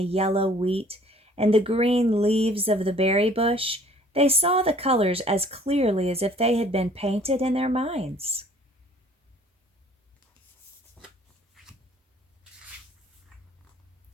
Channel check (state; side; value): normal; both; correlation 0.55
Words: yellow wheat, and the green leaves of the berry bush, they saw the colors as clearly as if they had been painted in their minds.